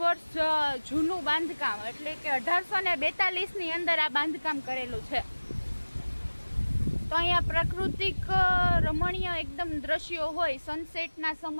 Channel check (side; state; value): both; inverted; correlation -1.00